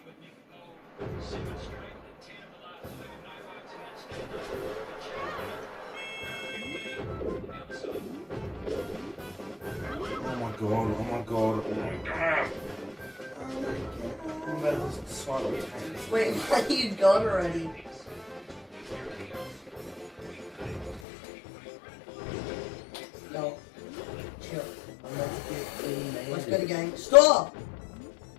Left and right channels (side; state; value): right; drops out; at 21.0 s